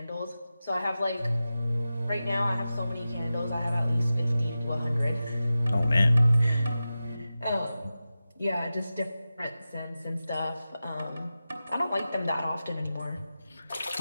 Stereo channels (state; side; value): inverted; both; correlation -0.94